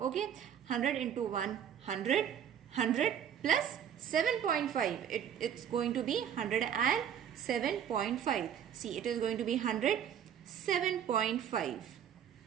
100 into 1, 100. 100 plus 7.5. It's going to be 107.5. See, it is going to be 107.5.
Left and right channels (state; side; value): quieter; left; 9.1 dB